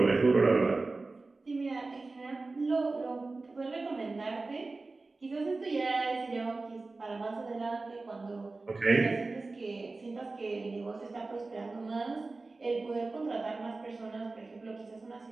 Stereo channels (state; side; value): quieter; left; 3.5 dB